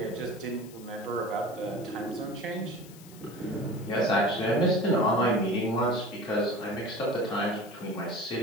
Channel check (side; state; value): left; noise; hiss, 21 dB below the sound